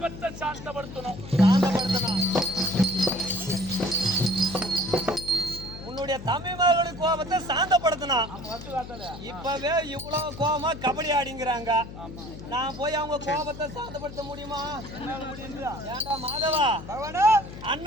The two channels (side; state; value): left; noise; hum, 13 dB below the sound